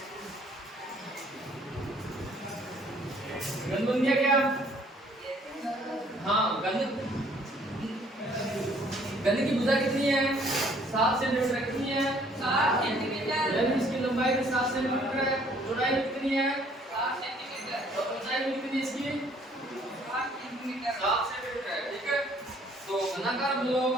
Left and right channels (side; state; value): both; normal; correlation 0.61